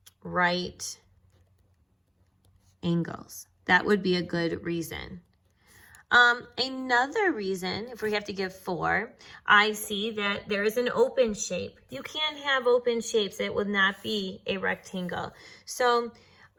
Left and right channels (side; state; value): both; identical; correlation 1.00